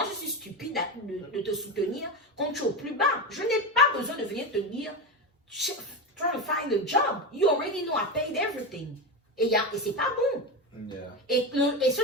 je suis stupide de te soutenir quand tu es au plus bas. Je n'ai pas besoin de venir te dire, try to find a job. You already know I paid everything. Et c'est pas bon. Yeah. Et ce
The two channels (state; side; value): normal; both; correlation 0.17